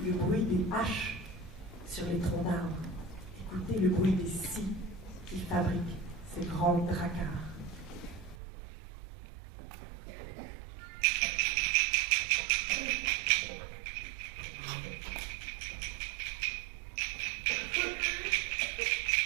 le bruit des haches sur les troncs d'arbres. Écoutez le bruit des scies qui fabriquent ces grands dracars.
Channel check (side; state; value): left; drops out; at 8.3 s